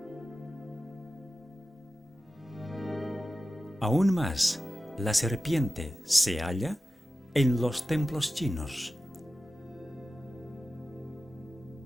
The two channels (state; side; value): normal; both; correlation 0.94